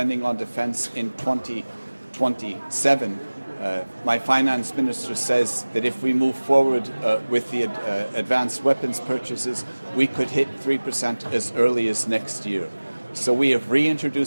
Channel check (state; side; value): inverted; both; correlation -1.00